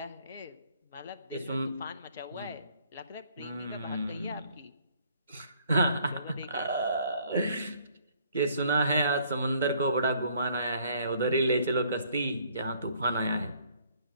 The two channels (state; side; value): inverted; both; correlation -0.62